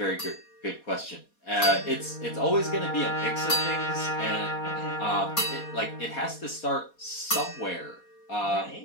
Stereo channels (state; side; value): late; right; 4.2 ms